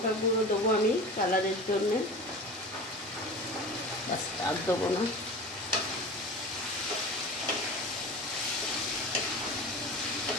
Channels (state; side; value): normal; both; correlation 0.34